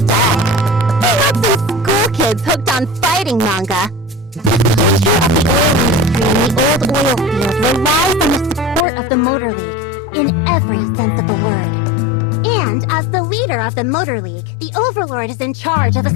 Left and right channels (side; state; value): right; drops out; at 8.8 s